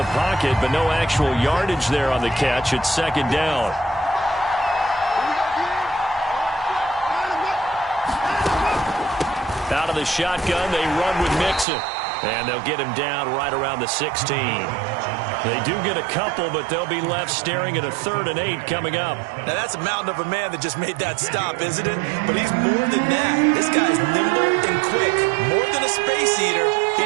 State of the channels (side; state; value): left; drops out; at 11.7 s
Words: pocket, but no actual yardage there on the catch. It's 2nd down. Out of the shotgun, they run with Mixon. And they'll get him down right around the 16. They do get a couple, but they'll be left staring at a 3rd and 8 coming up. Now, that's a mountain of a man that just made that stop, isn't it? But he's more than that. This guy's nimble and quick. More than a space eater. He